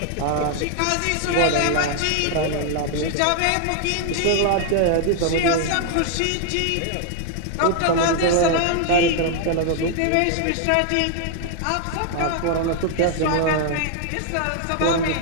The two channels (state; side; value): different; both; correlation 0.00